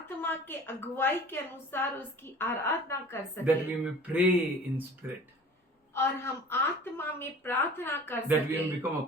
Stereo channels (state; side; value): normal; both; correlation 0.44